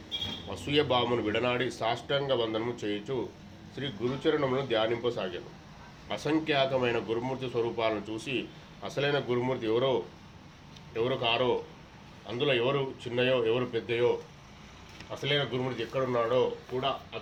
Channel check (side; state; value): both; identical; correlation 1.00